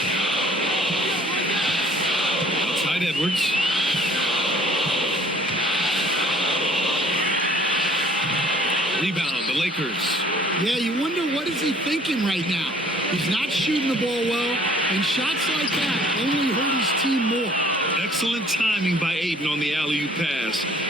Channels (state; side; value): normal; both; correlation 0.55